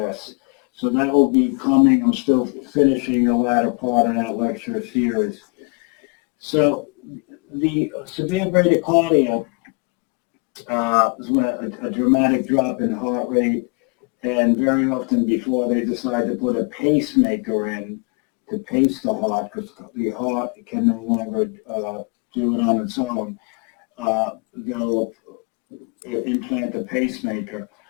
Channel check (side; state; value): right; quieter; 34.4 dB